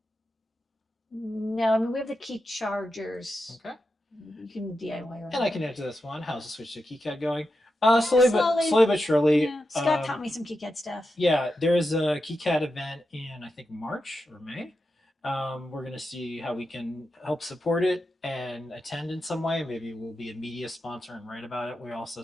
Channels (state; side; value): normal; both; correlation 0.89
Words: No, I mean, we have the key chargers. Okay. You can DIY around. And I can answer this one. How's the switch to KiCad going? Slowly but surely. Yeah. Scott taught me some KiCad stuff. Yeah, there is a KiCad event in, I think, March or May. We're going to see how we can help support it and attend in some way. Maybe we'll be a media sponsor and write about it. We also